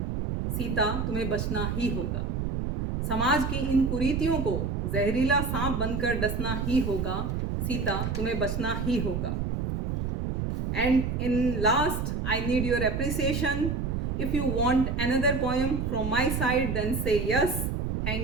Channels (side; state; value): right; noise; rumble, 1 dB below the sound